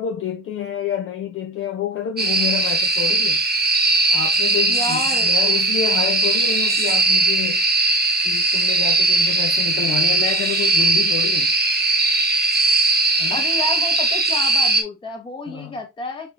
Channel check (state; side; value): normal; both; correlation 0.32